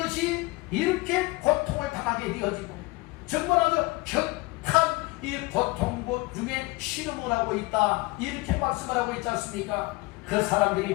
이렇게 고통을 당하게 되어지고 정말 아주 격한 이 고통고 중에 신음을 하고 있다 이렇게 말씀을 하고 있지 않습니까? 그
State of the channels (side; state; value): right; quieter; 23.1 dB